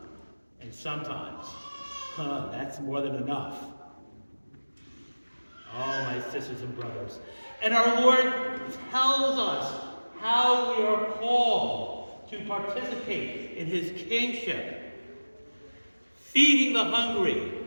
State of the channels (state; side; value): inverted; both; correlation -1.00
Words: sometimes, that's more than enough. Oh, my sisters and brothers. And our Lord tells us how we are called to participate in his kingship. Feeding the hungry,